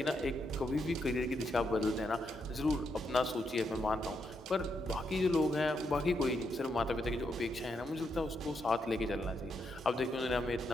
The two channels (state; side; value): normal; both; correlation 0.80